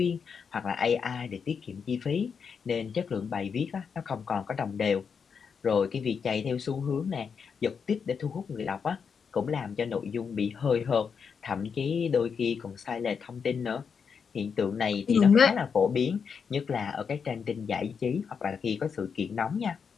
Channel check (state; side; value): quieter; right; 6.3 dB